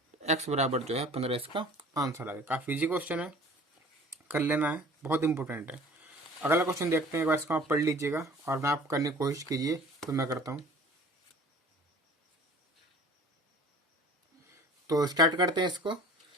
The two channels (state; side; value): normal; both; correlation 0.46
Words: x बराबर जो है 15 इसका आंसर आ गया। काफ़ी इजी क्वेश्चन है, कर लेना है, बहुत इंपॉर्टेंट है। अगला क्वेश्चन देखते हैं, एक बार इसको आप पढ़ लीजिएगा और मैं आप करने की कोशिश कीजिए, तो मैं करता हूँ। तो स्टार्ट करते हैं इसको।